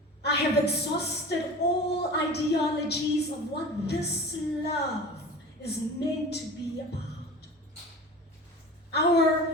I have exhausted all ideologies of what this love is meant to be about.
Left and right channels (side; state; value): both; normal; correlation 0.37